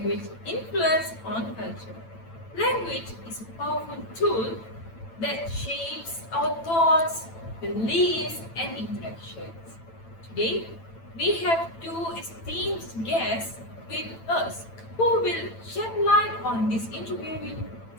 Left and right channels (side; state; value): right; late; 9.0 ms